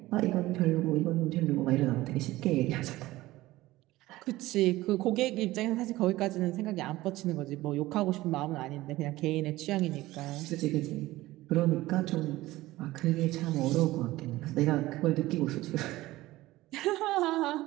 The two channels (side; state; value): left; quieter; 17.6 dB